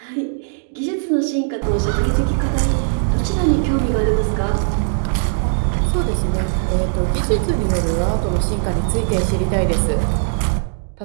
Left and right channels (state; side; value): silent; left; digital silence